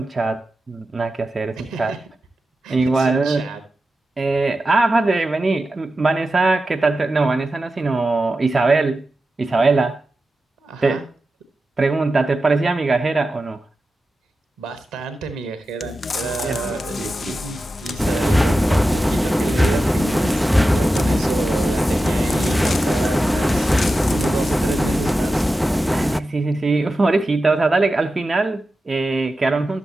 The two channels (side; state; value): both; normal; correlation 0.92